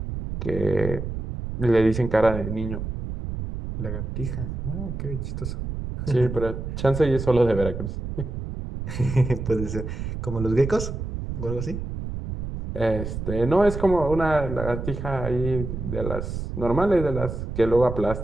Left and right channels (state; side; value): noise; right; rumble, 6 dB below the sound